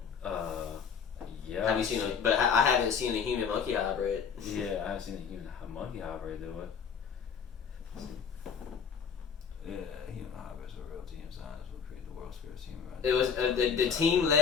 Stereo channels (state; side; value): quieter; right; 6.5 dB